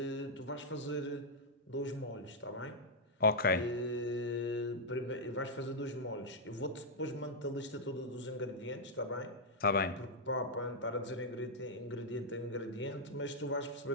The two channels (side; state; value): both; normal; correlation -0.04